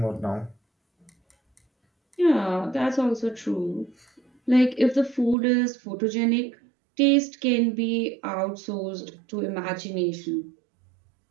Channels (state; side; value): drops out; left; at 5.4 s